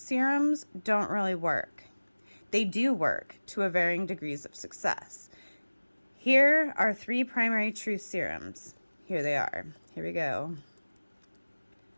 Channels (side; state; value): both; inverted; correlation -1.00